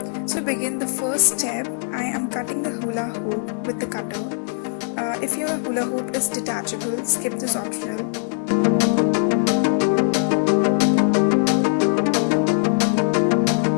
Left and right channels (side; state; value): right; silent; digital silence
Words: So to begin the first step, I am cutting the hula hoop with the cutter. If your hula hoop is detachable, skip this optional.